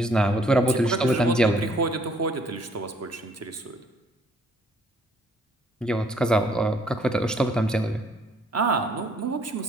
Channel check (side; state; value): both; normal; correlation 0.63